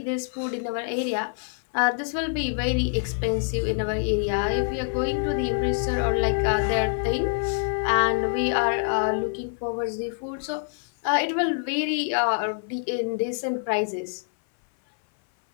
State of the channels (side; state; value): right; silent; 57 dB below the other